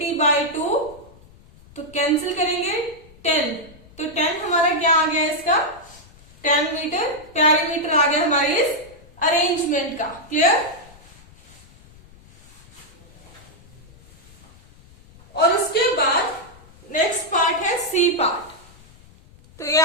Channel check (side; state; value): left; noise; rumble, 24 dB below the sound